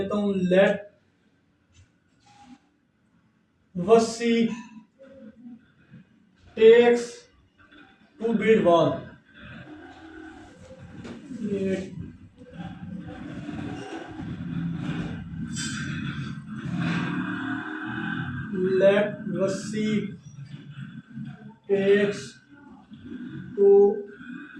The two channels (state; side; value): identical; both; correlation 1.00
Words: हूँ, let Wasi takes to build wall, let Wasi takes to